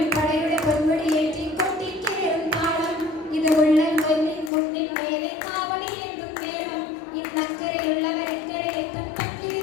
പടയുടെ പൊന്മുടിയേറ്റി കൊട്ടിക്കേറും താളം. ഇത് ഉള്ളൻ കുന്നിൻ മേലെ കാവടിയേന്തും നേരം, ഇന്നക്കരെ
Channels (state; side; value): drops out; right; at 4.5 s